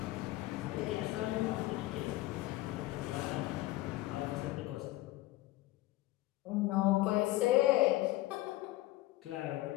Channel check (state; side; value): quieter; right; 17.5 dB